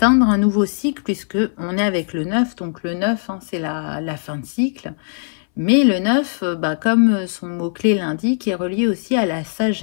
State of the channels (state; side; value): silent; right; 64 dB below the other